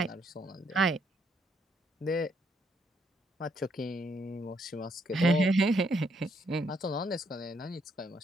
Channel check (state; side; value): normal; both; correlation 0.73